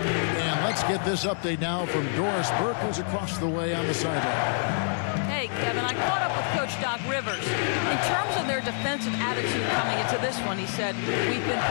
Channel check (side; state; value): right; silent; digital silence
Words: let's get this update now from Doris Burke, who's across the way on the sideline. Hey, Kevin, I caught up with Coach Doc Rivers. In terms of their defensive attitude coming into this one, he said, we've been